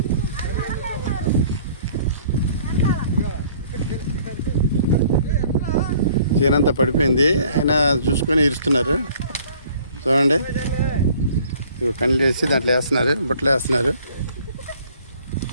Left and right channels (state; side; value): inverted; both; correlation -0.55